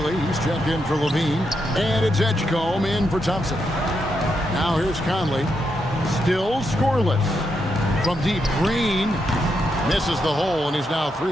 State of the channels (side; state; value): both; normal; correlation 0.82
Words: he's checked in for Levine. And it's Edgecombe in for Thompson. Now here's Conley. Still scoreless. From deep, Green misses the hole, and he's now